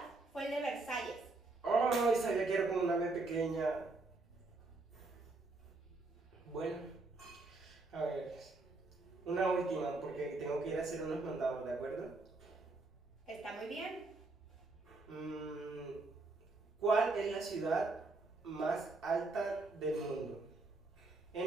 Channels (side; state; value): left; quieter; 3.4 dB